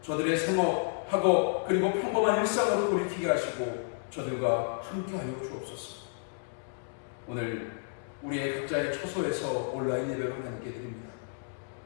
저들의 생업, 학업, 그리고 평범한 일상으로 돌이키게 하시고 저들과 함께하여 주옵소서. 오늘 우리의 각자의 처소에서 온라인 예배로 함께 드립니다.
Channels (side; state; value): right; silent; digital silence